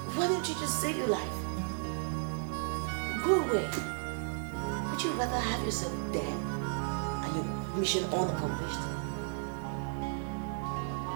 Why don't you just save your life? Go away. Would you rather have yourself dead and your mission unaccomplished?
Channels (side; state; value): left; silent; 55 dB below the other